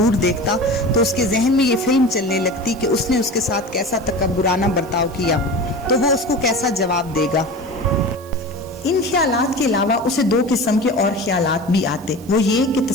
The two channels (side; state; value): right; noise; hiss, 23 dB below the sound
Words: دیکھتا تو اس کے ذہن میں یہ فلم چلنے لگتی کہ اس نے اس کے ساتھ کیسا تکبرانہ برتاؤ کیا تو وہ اس کو کیسا جواب دے گا۔ ان خیالات کے علاوہ اسے دو قسم کے اور خیالات بھی آتے، وہ یہ کہ